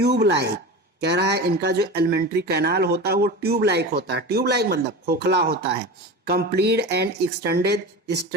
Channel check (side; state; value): both; normal; correlation 0.29